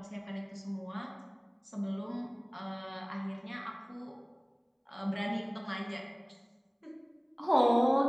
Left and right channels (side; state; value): both; identical; correlation 1.00